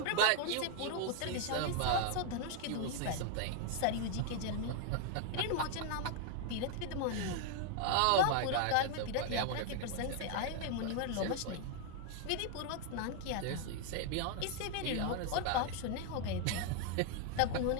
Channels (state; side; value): different; both; correlation 0.00